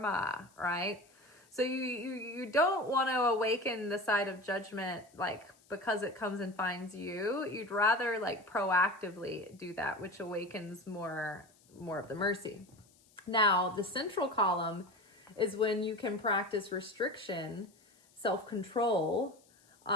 right? So you don't want to awaken the side of judgment, like, because it comes and finds you. You'd rather like proactively do that, which awakens more of the mercy. Now, the central column is when you can practice restriction, self-control,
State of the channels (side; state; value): left; noise; hiss, 30 dB below the sound